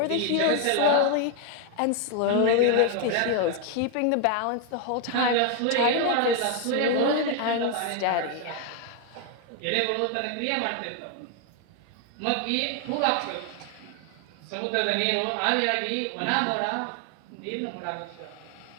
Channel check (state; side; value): different; both; correlation 0.01